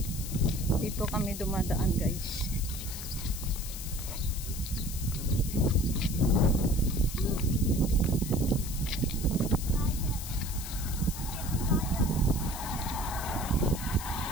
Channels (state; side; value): noise; left; hiss, 9 dB below the sound